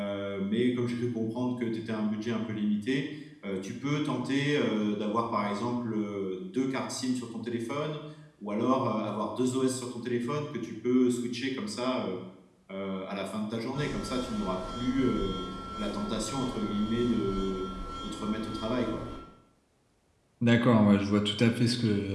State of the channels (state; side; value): identical; both; correlation 1.00